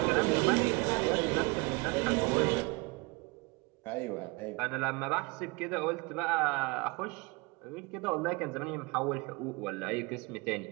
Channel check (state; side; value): quieter; left; 27.1 dB